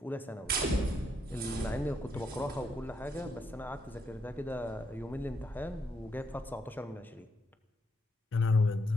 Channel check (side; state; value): both; normal; correlation 0.77